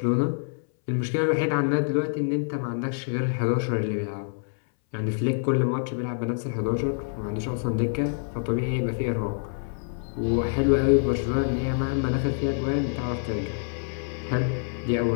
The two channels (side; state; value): right; silent; 60 dB below the other